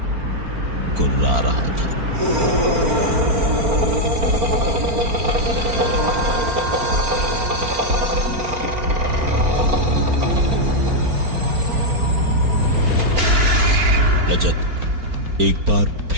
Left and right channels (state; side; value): late; left; 4.4 ms